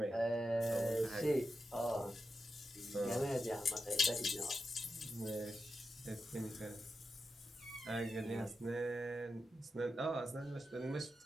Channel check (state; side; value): normal; both; correlation 0.89